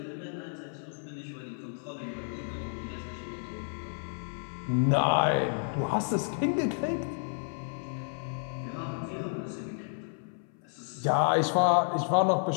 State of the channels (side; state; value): right; silent; 57 dB below the other